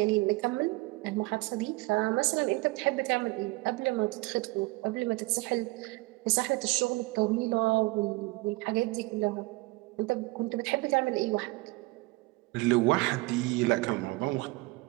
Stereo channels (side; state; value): left; quieter; 23.2 dB